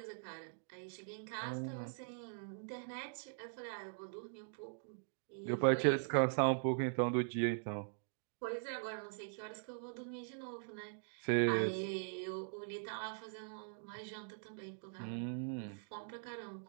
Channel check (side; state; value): left; silent; digital silence